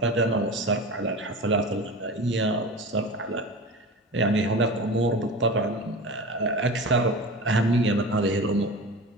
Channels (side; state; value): both; normal; correlation 0.31